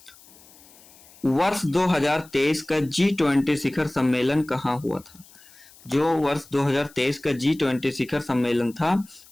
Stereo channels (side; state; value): left; noise; hiss, 24 dB below the sound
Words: वर्ष 2023 का G20 शिखर सम्मेलन कहाँ हुआ था? जो वर्ष 2023 का G20 शिखर सम्मेलन था